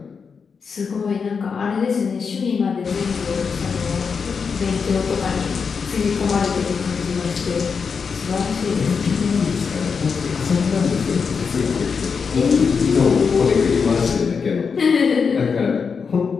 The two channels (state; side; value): quieter; right; 5.7 dB